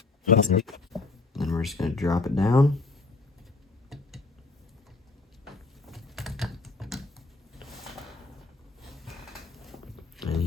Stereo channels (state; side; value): quieter; right; 3.7 dB